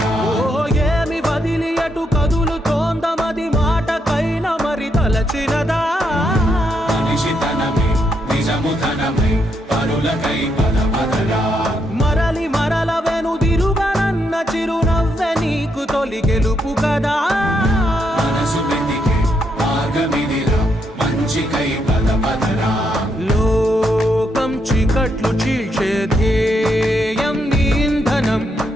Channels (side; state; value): both; normal; correlation 0.78